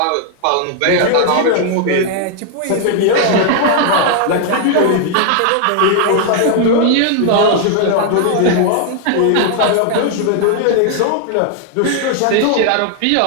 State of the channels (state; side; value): different; both; correlation 0.00